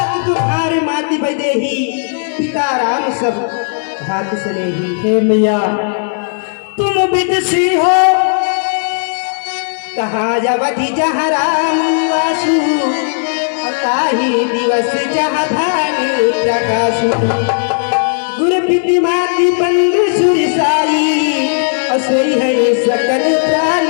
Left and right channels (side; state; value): right; silent; digital silence